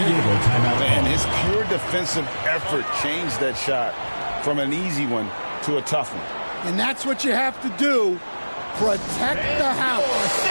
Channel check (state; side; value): inverted; both; correlation -1.00